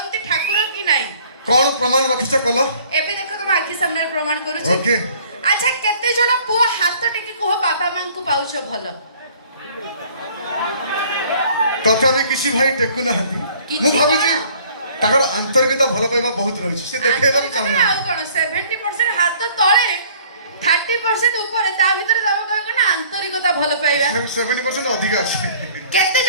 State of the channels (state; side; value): inverted; both; correlation -0.55